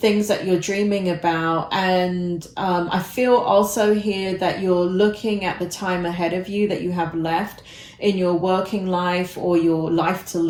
things that you're dreaming about. And I feel also here that you're looking at the time ahead of you that you have left in your working life, or your life to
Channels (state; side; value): identical; both; correlation 1.00